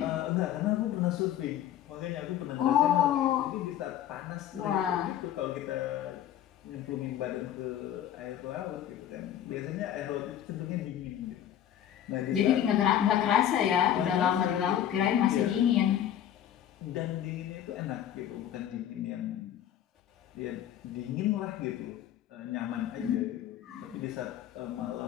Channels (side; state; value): right; quieter; 10.9 dB